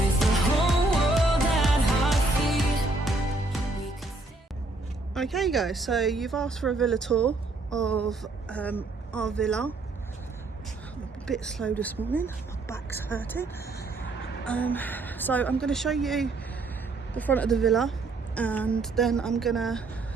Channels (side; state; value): left; quieter; 3.2 dB